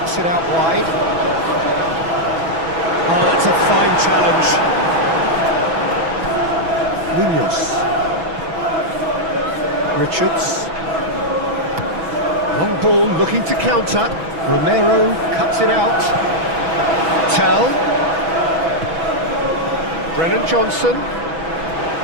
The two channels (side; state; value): left; late; 6.1 ms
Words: it out wide. Oh, that's a fine challenge. Munoz. Richards. Long ball looking to counter. Romero cuts it out. Tell. Brennan Johnson.